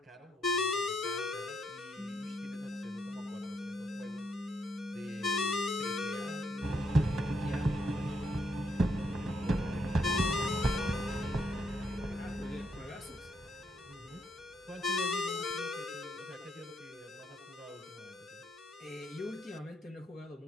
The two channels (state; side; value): normal; both; correlation 0.76